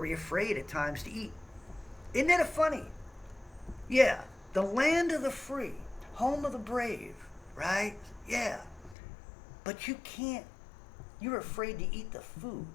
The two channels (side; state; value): right; drops out; at 9.0 s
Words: afraid at times to eat. Isn't that funny? Yeah, the land of the free, home of the brave, right? Yeah. But you can't. You're afraid to eat the food